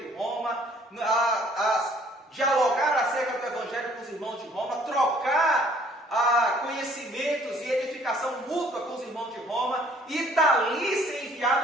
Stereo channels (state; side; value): normal; both; correlation 0.59